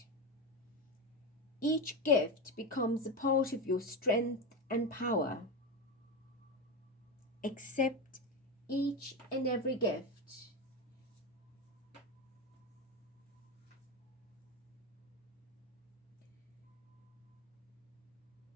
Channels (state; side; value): normal; both; correlation 0.15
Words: Each gift becomes a part of your strength and power. Accept each and every gift.